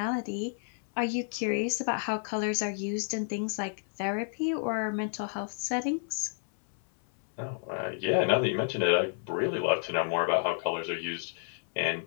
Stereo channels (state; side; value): silent; right; 57 dB below the other